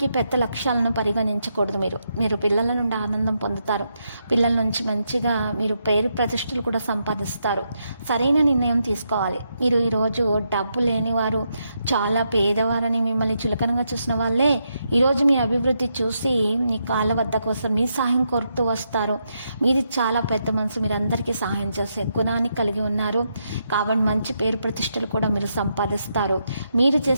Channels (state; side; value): inverted; both; correlation -0.81